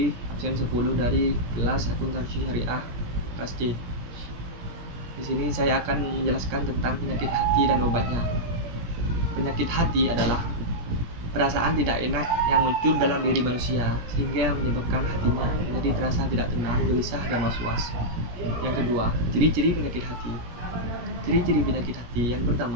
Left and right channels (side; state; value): left; late; 17 ms